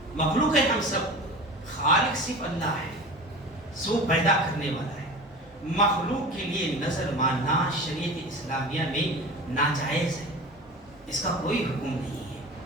مخلوق ہے ہم سب خالق صرف اللہ ہے سو پیدا کرنے والا ہے. مخلوق کے لیے نظر ماننا شریعت اسلامیہ میں ناجائز ہے اس کا کوئی حکم نہیں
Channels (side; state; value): both; normal; correlation 0.34